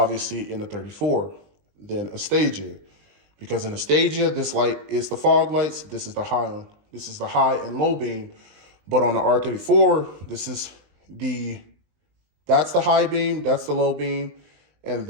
in the 34 than a Stagea. Because in a Stagea, this light is the fog lights. This is the high and low beam. But on the R34, that's the high beam, that's the low beam, and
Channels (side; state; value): left; late; 20 ms